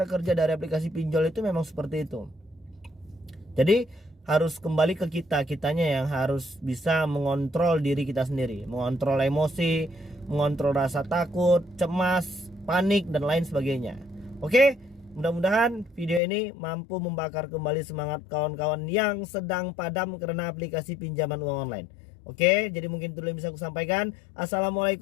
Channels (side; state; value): right; drops out; at 16.2 s